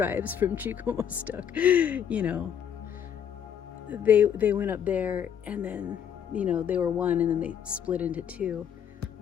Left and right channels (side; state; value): right; quieter; 8.6 dB